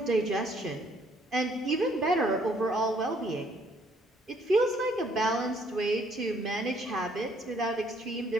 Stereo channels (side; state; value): both; normal; correlation 0.65